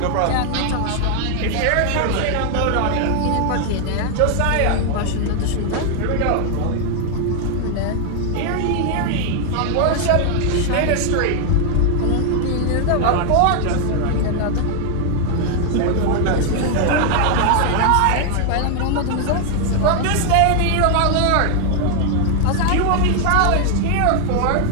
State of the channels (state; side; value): different; both; correlation 0.00